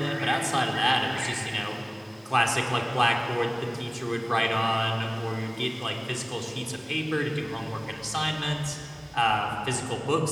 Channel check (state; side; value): identical; both; correlation 1.00